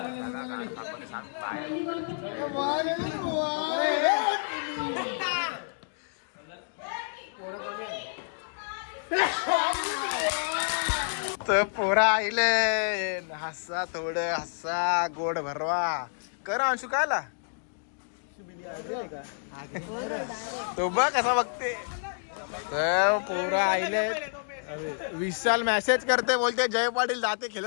तर पोरा आईले हसा थोडं हसा गोड भरवा कर. अंशू काय आला तो बघ कसा बघते. तर पोरा आईले विशाल मेसेज करते बोलते जय पाटील जाते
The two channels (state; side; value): silent; right; digital silence